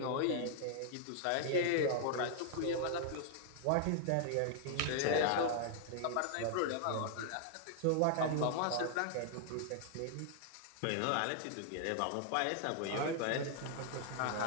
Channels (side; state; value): both; different; correlation -0.01